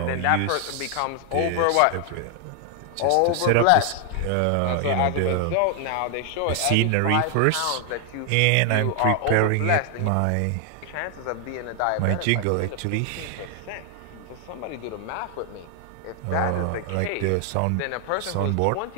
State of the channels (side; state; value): both; different; correlation 0.00